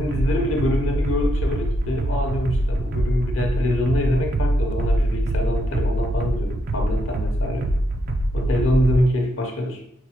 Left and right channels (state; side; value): normal; both; correlation 0.80